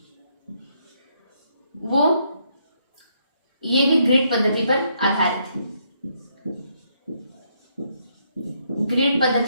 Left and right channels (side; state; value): both; inverted; correlation -0.74